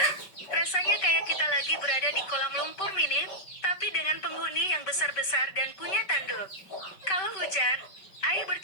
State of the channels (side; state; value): right; late; 5.3 ms